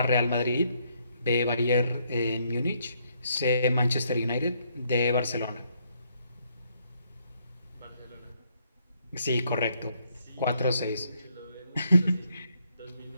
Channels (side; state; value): both; inverted; correlation -0.72